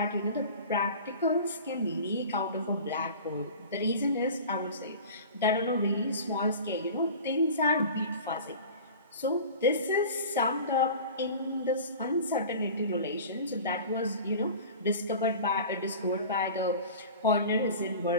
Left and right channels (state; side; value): inverted; both; correlation -0.38